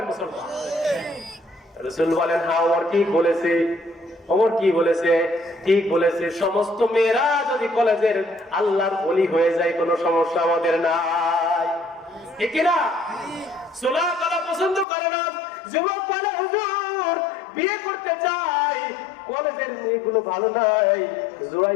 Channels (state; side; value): drops out; right; at 14.9 s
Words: মুসলমান। রাসূল বলেন, হ্যাঁ ওমর ঠিক বলেছে। ওমর কি বলেছে? ঠিক বলেছে। সমস্ত মেয়েরা যদি কলেজের আল্লাহর ওলি হয়ে যায় কোনো সমস্যা আমাদের নাই, ঠিক না? সোলা কলা পছন্দ করে না। যুবক বলে হুজুর বিয়ে করতে চাই, কলেজের মেয়েগুলো ভালো নাই,